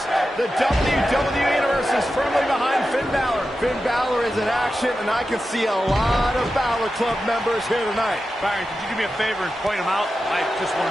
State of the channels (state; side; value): normal; both; correlation 0.91